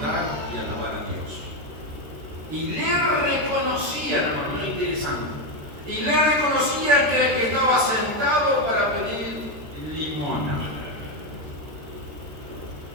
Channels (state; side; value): late; left; 13 ms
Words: y alabar a Dios. Y le reconocían, lo interesante, y le reconocían que el que estaba sentado para pedir